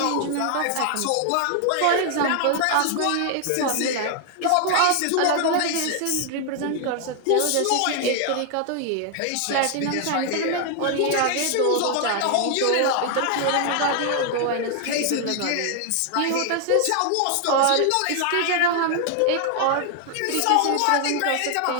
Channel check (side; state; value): both; different; correlation 0.00